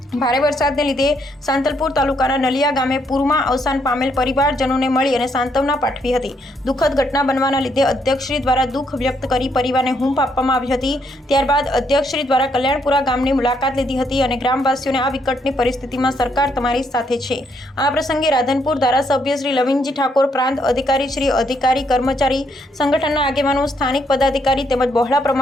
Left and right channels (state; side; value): normal; both; correlation 0.73